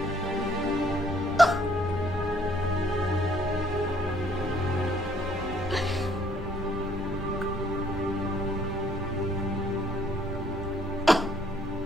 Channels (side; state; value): both; normal; correlation 0.64